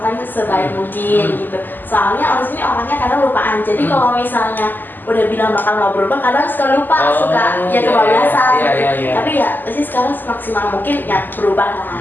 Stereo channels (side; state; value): right; late; 0.089 ms